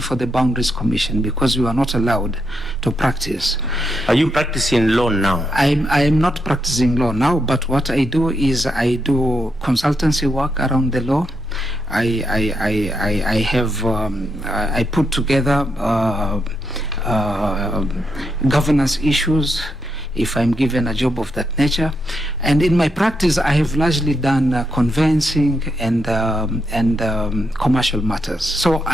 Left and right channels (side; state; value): left; noise; rumble, 20 dB below the sound